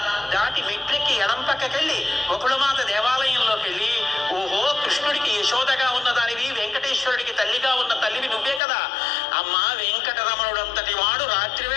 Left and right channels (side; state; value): right; drops out; at 8.6 s